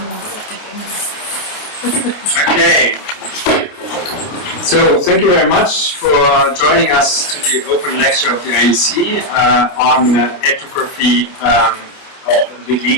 Okay. So thank you very much for joining us to the open lecture of the IUC on ethnography of the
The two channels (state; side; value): late; right; 28 ms